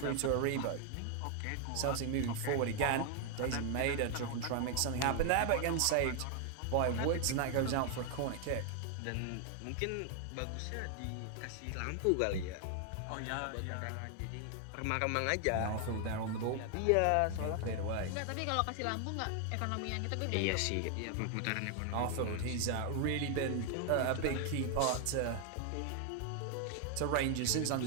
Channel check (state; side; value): different; both; correlation 0.00